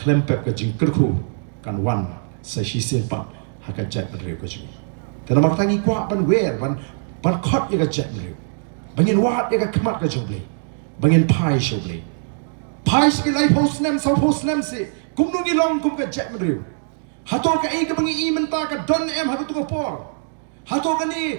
ke jingkerku kan wan sa shisin pat haka jat menriu ke jing. Tena mak tangi kuak ban wer ban kot ya ka jat menriu. Bangin wat ya ka kemat ka jong blei. Bangin pai sho blei. Pai si lai post nem sa post nem si kum nungi long kum ka jat menriu. Hatol ka ka bangi I menta ka don em haka tu por. Hatol ka ni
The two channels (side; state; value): left; silent; digital silence